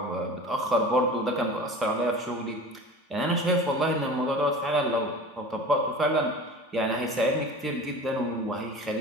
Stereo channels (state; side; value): normal; both; correlation 0.37